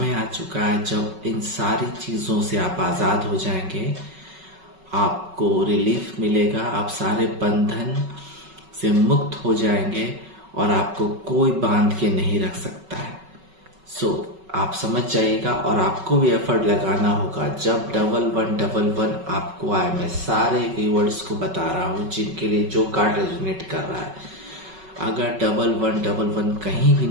आ चुका है जब इन सारी चीज़ों से आप आज़ाद हो जाएंगे, आपको रिलीफ मिलेगा, आप सारे बंधन से मुक्त हो जाएंगे और आपको कोई बांध के नहीं रख सकता है। आप समझ जाइएगा और आपको भी एफर्ट लगाना होगा। जब 1111 आपको आए, मैं सारे व्यूअर्स को बता रहा हूँ जिनके लिए जो कार्ड रेजोनेट कर रहा है, अगर 1111 कहीं भी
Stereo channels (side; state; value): left; late; 5.3 ms